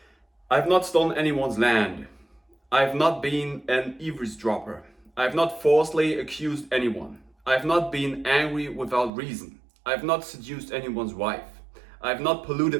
I have not stolen anyone's land. I have not been an eavesdropper. I have not falsely accused anyone. I have not been angry without reason. I have not seduced anyone's wife. I have not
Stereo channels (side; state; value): left; drops out; at 9.1 s